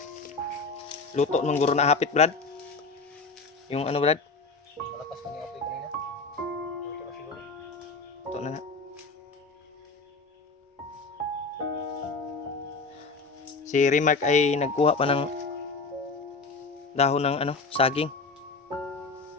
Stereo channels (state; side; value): quieter; right; 4.0 dB